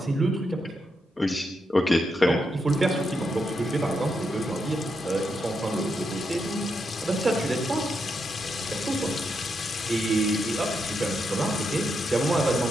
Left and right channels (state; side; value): normal; both; correlation 0.82